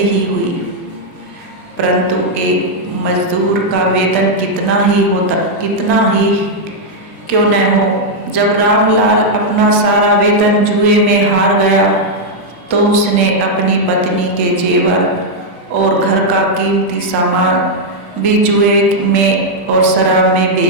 हुई। परंतु एक मजदूर का वेतन कितना ही क्यों न हो, जब रामलाल अपना सारा वेतन जुए में हार गया, तो उसने अपनी पत्नी के जेवर और घर का कीमती सामान भी जुए में और शराब में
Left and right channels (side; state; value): right; late; 20 ms